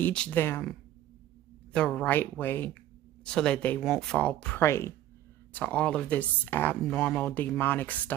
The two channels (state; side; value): quieter; left; 12.8 dB